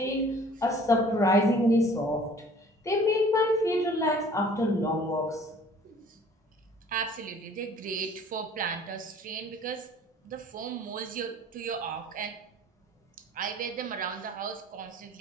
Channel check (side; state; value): both; normal; correlation 0.51